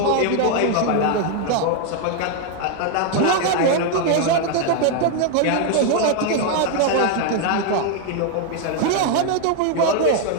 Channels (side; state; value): both; different; correlation 0.01